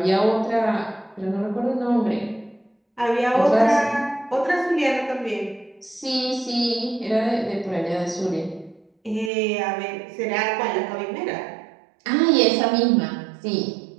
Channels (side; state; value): left; drops out; at 9.3 s